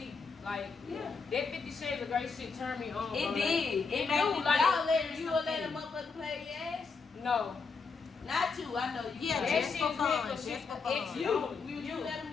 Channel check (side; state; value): right; quieter; 4.9 dB